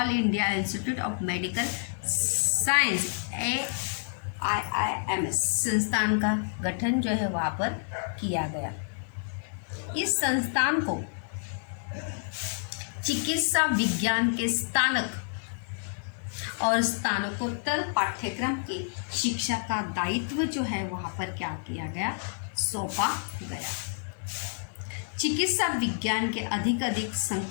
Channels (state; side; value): silent; right; digital silence